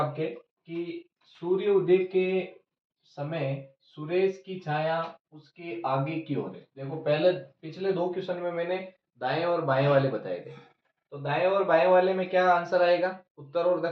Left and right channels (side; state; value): both; identical; correlation 1.00